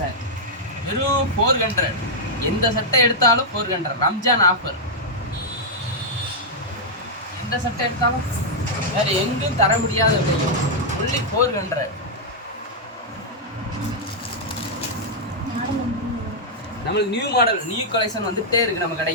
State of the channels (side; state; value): both; normal; correlation -0.06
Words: வெறும் 400. எந்த சட்டை எடுத்தாலும் 400. ரம்ஜான் ஆஃபர். எந்த சட்டை எடுத்தாலும் வேறு எங்கும் தர முடியாத விலையும் ஒன்லி 400. நம்மளுக்கு நியூ மாடல் நியூ கலெக்ஷன் வந்துகிட்டே இருக்குது நம்ம